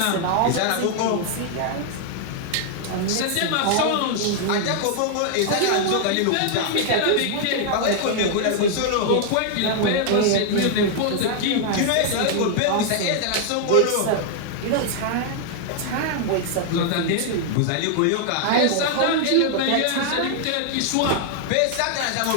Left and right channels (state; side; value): different; both; correlation 0.00